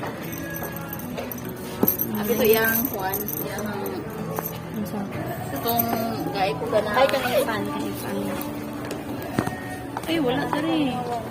Abi to yang kuan, yang itong gay ko gana. Ay, kanina fan. Ay, wala ka rin.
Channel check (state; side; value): identical; both; correlation 1.00